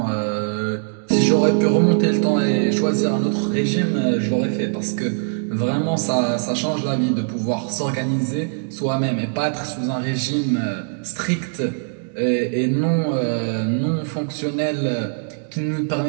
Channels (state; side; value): silent; left; digital silence